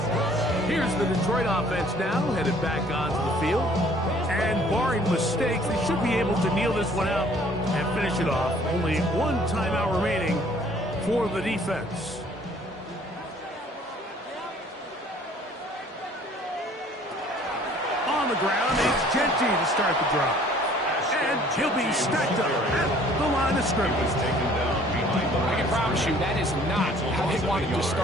Here's the Detroit offense now, headed back onto the field. And barring mistakes, they should be able to kneel this one out and finish it off. Only one timeout remaining for the defense. On the ground, it's Genty to start the drive. And he'll be stacked up at the line of scrimmage. I can promise you that is not how they wanted to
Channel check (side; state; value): both; normal; correlation 0.56